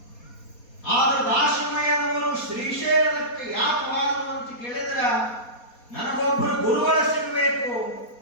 ಆದ್ರೆ ದಾಸಮಯ್ಯನವರು ಶ್ರೀಶೈಲಕ್ಕೆ ಯಾಕೆ ಹೋದ್ರು ಅಂತ ಕೇಳಿದ್ರ, ನನಗೊಬ್ಬರು ಗುರುಗಳ ಸಿಗಬೇಕು,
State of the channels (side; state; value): right; late; 4.2 ms